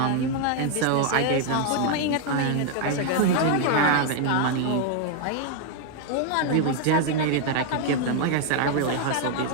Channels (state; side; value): different; both; correlation 0.00